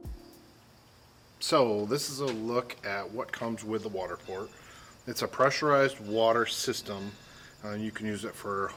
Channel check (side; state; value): both; identical; correlation 1.00